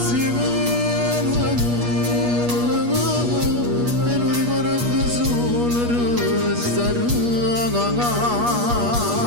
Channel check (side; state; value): left; late; 8.4 ms